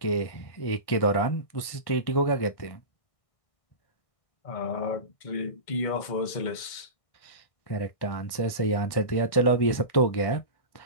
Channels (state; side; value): late; right; 1.6 ms